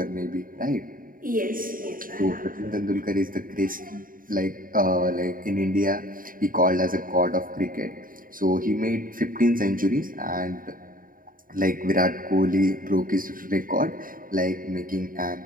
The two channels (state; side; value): late; left; 0.41 ms